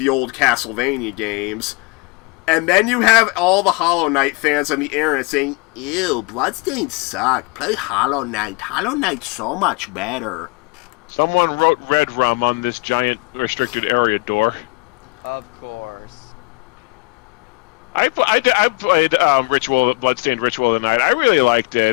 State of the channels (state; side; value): quieter; right; 27.5 dB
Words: old Castlevania games. And then you have all the Hollow Knight fans on the internet saying, "Ew, Bloodstained sucked. Play Hollow Knight. Hollow Knight's so much better." Someone wrote Red Rum on this giant restricted area door. Of course. I played Bloodstained Ritual of the Night. I really liked